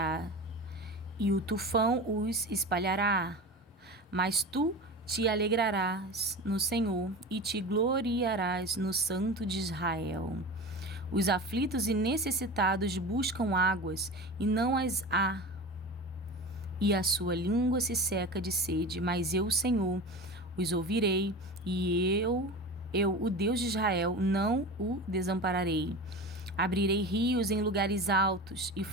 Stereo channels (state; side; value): normal; both; correlation 0.31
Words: e o tufão os espalhará. Mas tu te alegrarás no Senhor e te gloriarás no Santo de Israel. Os aflitos e necessitados buscam águas e não as há, e a sua língua se seca de sede, mas eu, Senhor, os ouvirei, e eu, o Deus de Israel, não o desampararei. Abrirei rios em lugares altos e